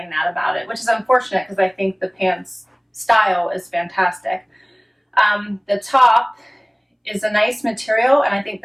that about it, which is unfortunate because I think the pants style is fantastic. The top is a nice material and I think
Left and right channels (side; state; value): both; identical; correlation 1.00